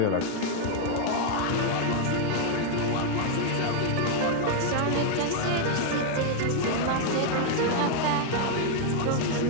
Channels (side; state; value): both; different; correlation 0.00